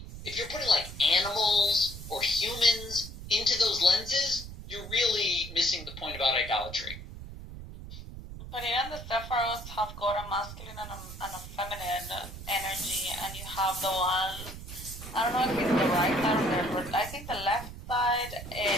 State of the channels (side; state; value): right; noise; rumble, 11 dB below the sound